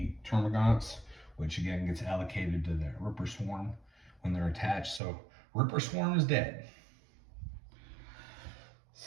Termagants, which again gets allocated to the Ripper Swarm when they're attached. So Ripper Swarm is dead.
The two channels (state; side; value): drops out; left; at 5.0 s